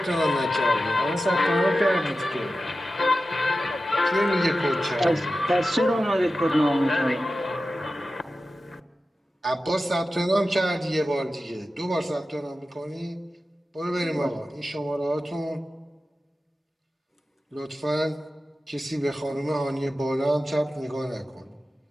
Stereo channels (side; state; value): both; normal; correlation 0.93